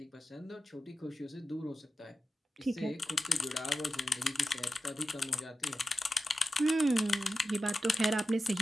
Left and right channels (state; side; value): normal; both; correlation 0.92